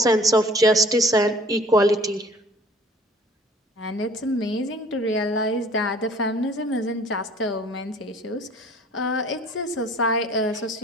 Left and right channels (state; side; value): normal; both; correlation 0.52